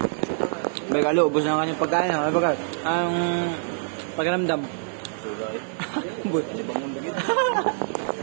Bay Carlo, ubos na ang kanyang pagkain. Ano ba? Ang pagkaramdam. Sugay. Boy,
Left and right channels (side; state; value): left; silent; digital silence